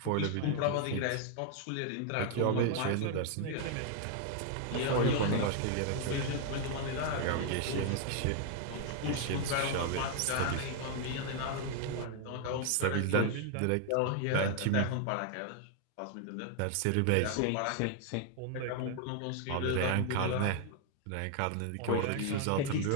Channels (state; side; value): different; both; correlation 0.00